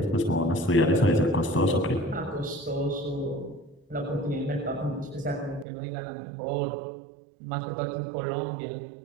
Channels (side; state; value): left; drops out; at 5.7 s